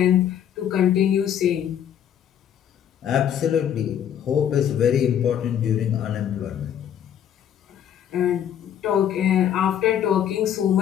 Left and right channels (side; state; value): right; quieter; 9.6 dB